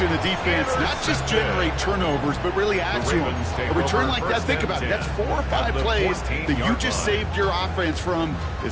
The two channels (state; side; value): identical; both; correlation 1.00